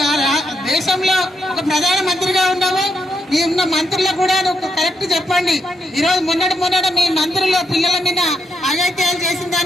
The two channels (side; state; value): both; normal; correlation 0.80